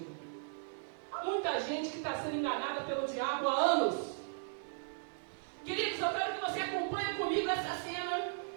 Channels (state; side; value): silent; left; digital silence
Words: Há muita gente que está sendo enganada pelo diabo há anos. Queridos, eu quero que você acompanhe comigo essa cena.